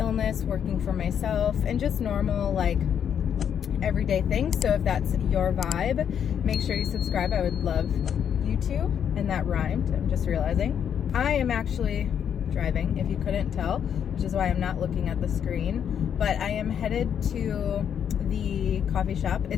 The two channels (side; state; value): right; quieter; 8.5 dB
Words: working for myself, and just normal like everyday things. So if that's your vibe, make sure you subscribe. I would love you to. And that rhymed, I'm just realizing. I am actually driving, if you couldn't tell, which is why I'm not looking at the screen, but I am headed to the coffee shop.